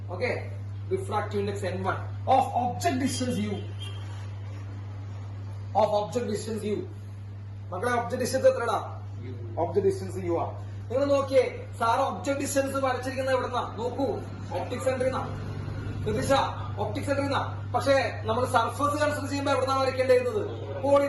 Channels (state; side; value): identical; both; correlation 1.00